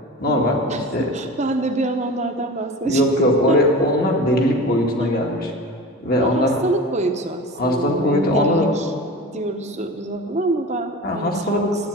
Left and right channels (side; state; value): both; normal; correlation 0.34